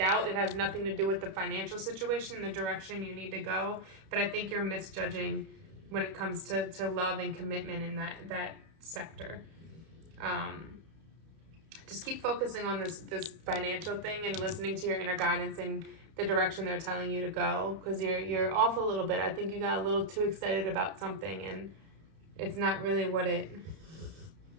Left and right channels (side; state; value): left; late; 31 ms